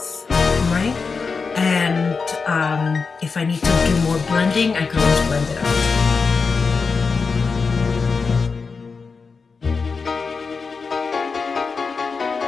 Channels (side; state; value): right; quieter; 4.9 dB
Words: right? And if I need to do more blending, I can always blend it out.